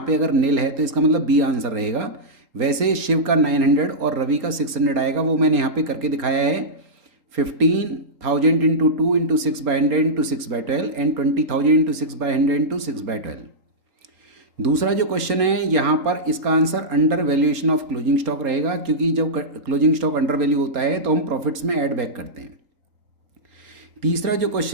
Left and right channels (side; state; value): left; late; 3.8 ms